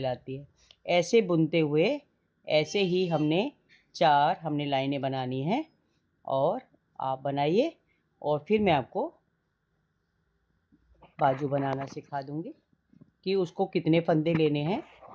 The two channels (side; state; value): both; identical; correlation 1.00